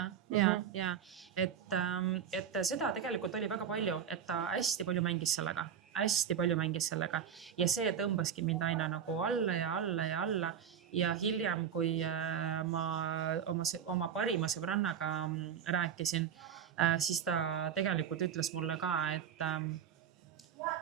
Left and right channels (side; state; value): left; quieter; 8.2 dB